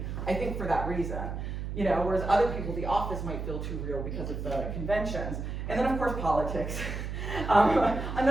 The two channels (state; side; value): noise; right; hum, 5 dB below the sound